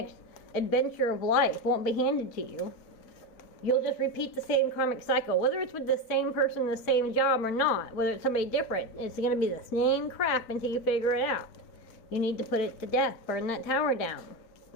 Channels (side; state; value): right; late; 4.5 ms